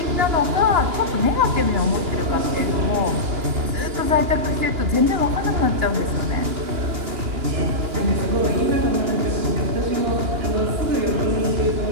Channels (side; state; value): left; late; 2.9 ms